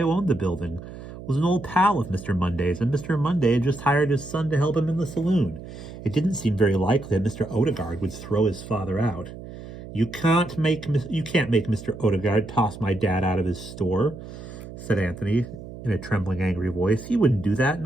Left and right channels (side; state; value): right; noise; hum, 13 dB below the sound